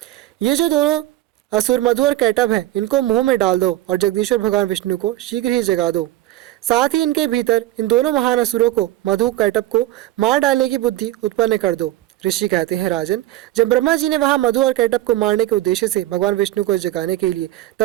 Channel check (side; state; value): left; quieter; 15.4 dB